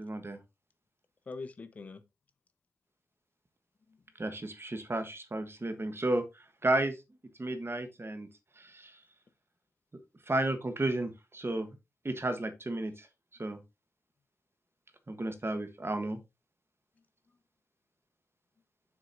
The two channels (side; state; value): both; normal; correlation 0.82